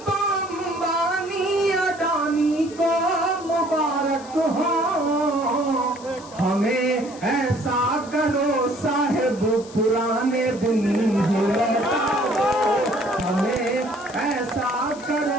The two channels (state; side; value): noise; left; hiss, 20 dB below the sound